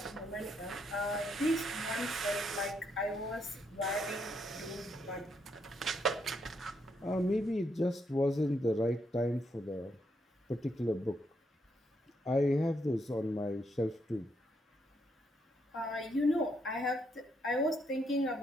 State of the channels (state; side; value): normal; both; correlation 0.77